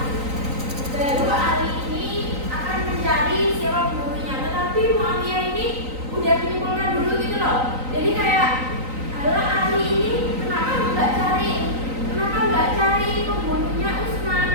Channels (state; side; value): late; left; 3.9 ms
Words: baru Ali ini akan mencari siapa pembunuhnya. Tetapi Muawiyah ini udah menyimpulkan dulu gitu loh. Jadi kayak, alah Ali ini kenapa nggak cari pembunuhnya